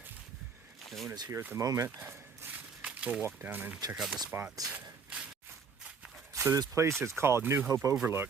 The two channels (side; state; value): left; quieter; 5.6 dB